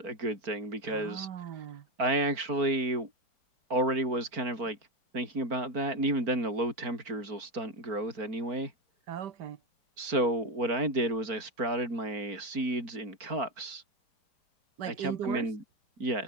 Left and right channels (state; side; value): late; left; 4.4 ms